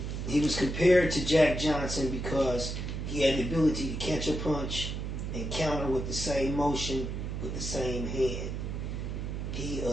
He was compared to Jack Johnson because he had the ability to catch a punch and counter with the same motion with the same hand. He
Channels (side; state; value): right; noise; hum, 4 dB below the sound